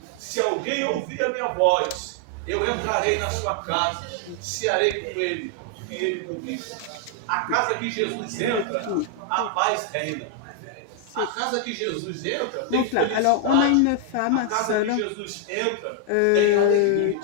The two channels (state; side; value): different; both; correlation 0.00